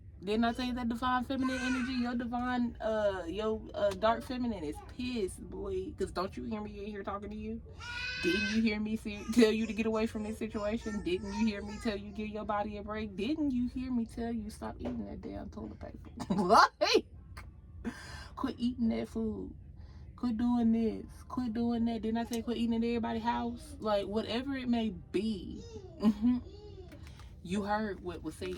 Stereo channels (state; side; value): identical; both; correlation 1.00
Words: Didn't I tell you that divine feminine energy, your divine, dark feminine is pissed, boy. Because don't you hear me in here talking to you? Didn't you hear me tell you to get away from this situation? Didn't you hear me tell you give your body a break? Didn't you hear me tell you stop eating that damn toilet paper? Like, quit eating that food. Quit doing this. Quit doing that. Didn't I say quit eating at everybody's house? Like, whatever it may be. You heard what was